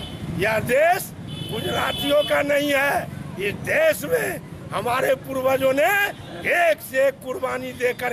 यह देश गुजरातियों का नहीं है। इस देश में हमारे पूर्वजों ने एक से एक कुर्बानी दे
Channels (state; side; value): identical; both; correlation 1.00